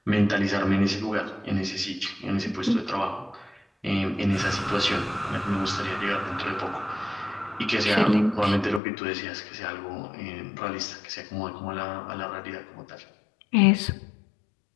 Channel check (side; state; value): right; drops out; at 8.8 s